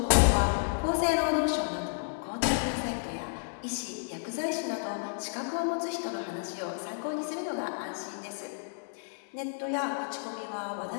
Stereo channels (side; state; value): right; silent; 57 dB below the other